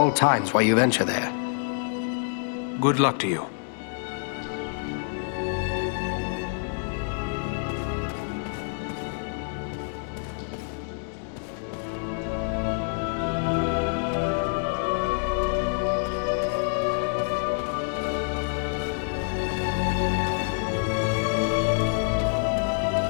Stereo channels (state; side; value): silent; right; 60 dB below the other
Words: times while you venture there. Good luck to you.